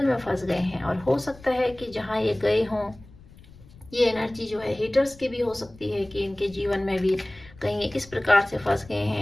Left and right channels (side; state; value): left; noise; rumble, 22 dB below the sound